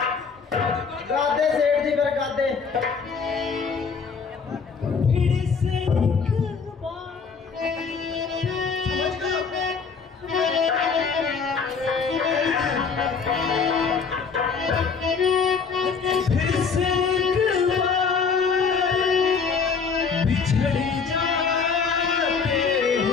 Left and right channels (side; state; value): right; quieter; 5.5 dB